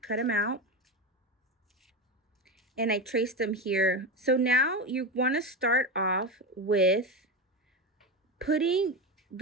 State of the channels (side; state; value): both; normal; correlation 0.18